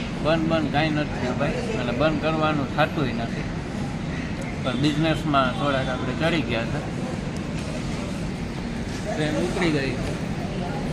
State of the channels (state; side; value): identical; both; correlation 1.00